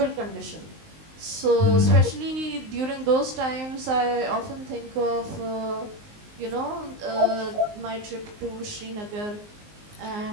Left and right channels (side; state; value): left; late; 19 ms